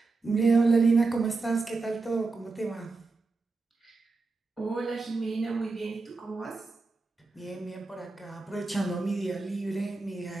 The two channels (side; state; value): left; quieter; 3.8 dB